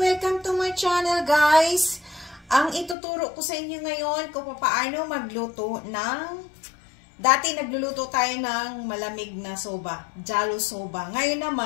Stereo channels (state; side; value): drops out; right; at 3.0 s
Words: to my channel guys! Ang ituturo ko sa inyo ngayon kung paano magluto ng dati nagluluto tayo ng malamig na soba, jalo soba. Ngayon